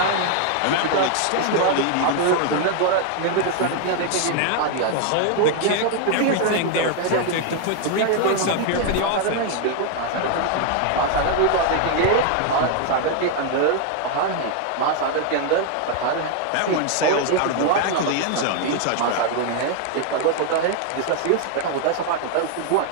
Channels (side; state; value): both; different; correlation 0.00